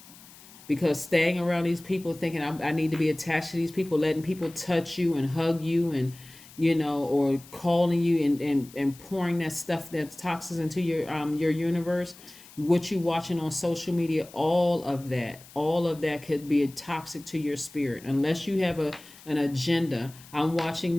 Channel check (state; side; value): noise; left; hiss, 21 dB below the sound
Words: Because staying around these people thinking I need to be attached to these people, letting people touch you and hug you and, or calling you and pouring that stuff, that's toxins into your universe, what you're watching on social media, all of that could be toxic to your spirit unless you have an agenda. I'm watching